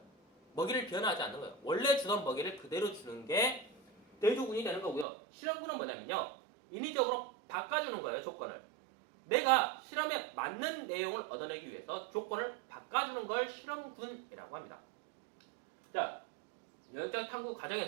먹이를 변화하지 않는 거예요. 원래 주던 먹이를 그대로 주는 게 대조군이 되는 거고요. 실험군은 뭐냐면요. 인위적으로 바꿔주는 거예요. 조건을. 내가 실험에 맞는 내용을 얻어내기 위해서 조건을 바꿔주는 걸 실험군이라고 합니다. 자, 영역적 탐구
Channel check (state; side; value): drops out; left; at 5.1 s